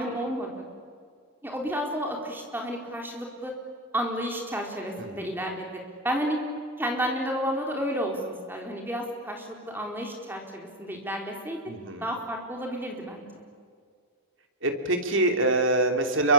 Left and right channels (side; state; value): both; normal; correlation 0.12